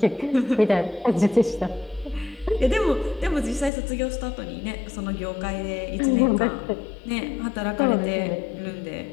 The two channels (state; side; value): drops out; right; at 3.7 s